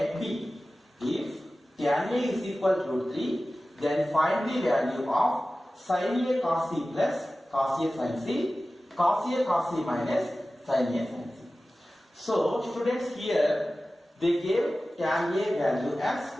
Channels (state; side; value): normal; both; correlation 0.96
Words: B. If tan A is equal to root 3, then find the value of sin A cos C plus cos A sin C, cos A cos C minus sin A sin C. So students, here they gave tan A value as